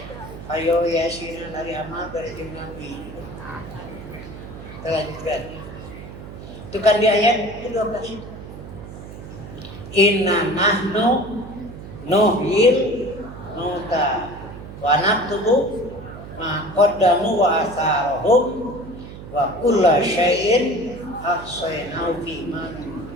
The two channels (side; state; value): right; noise; hum, 13 dB below the sound